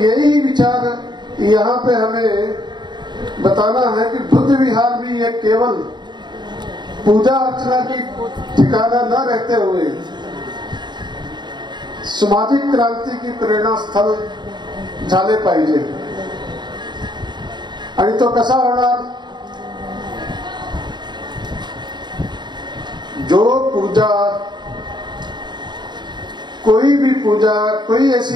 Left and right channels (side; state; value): left; late; 0.21 ms